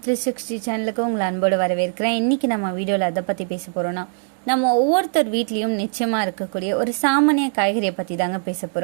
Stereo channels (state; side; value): silent; left; digital silence